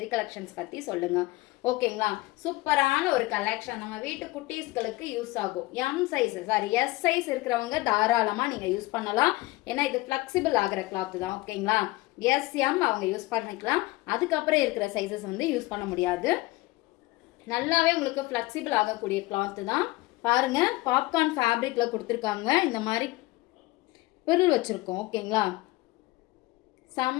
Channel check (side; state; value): right; quieter; 20.5 dB